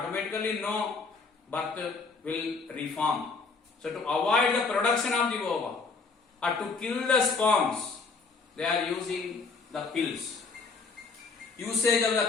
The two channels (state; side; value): quieter; right; 4.4 dB